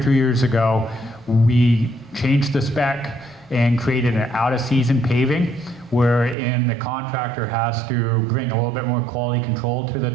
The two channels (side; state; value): left; drops out; at 6.4 s